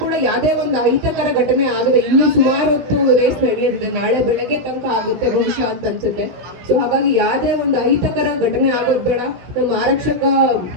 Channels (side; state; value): left; late; 16 ms